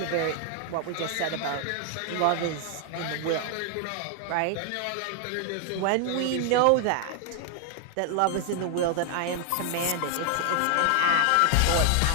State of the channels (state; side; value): different; both; correlation 0.00